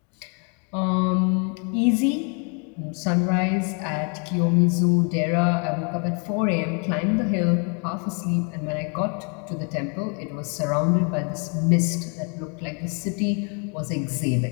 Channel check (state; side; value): quieter; right; 37.6 dB